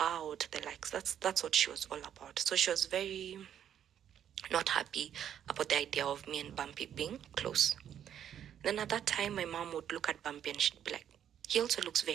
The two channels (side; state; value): left; quieter; 9.7 dB